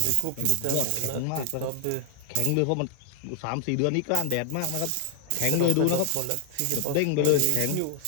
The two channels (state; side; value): different; both; correlation 0.00